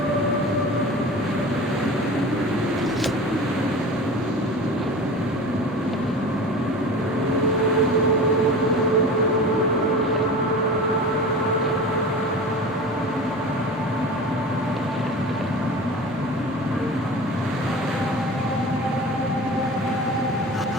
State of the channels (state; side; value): normal; both; correlation 0.35